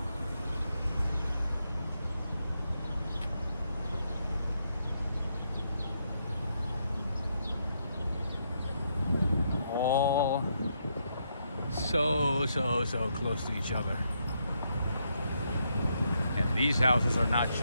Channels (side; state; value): both; inverted; correlation -0.78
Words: All so close to each other. And these houses are not